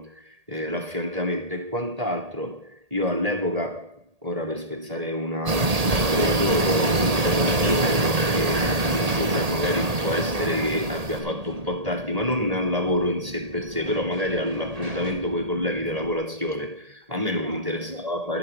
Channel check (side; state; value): left; late; 1.8 ms